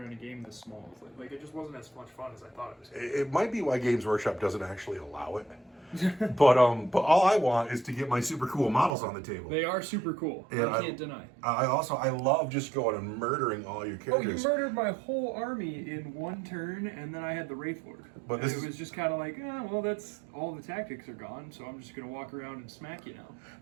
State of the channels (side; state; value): left; drops out; at 9.0 s